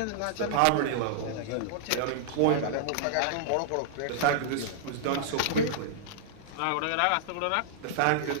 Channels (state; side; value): different; both; correlation -0.01